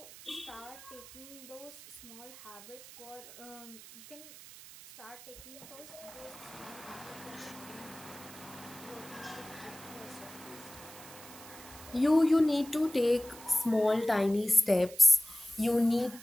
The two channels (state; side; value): noise; right; hiss, 17 dB below the sound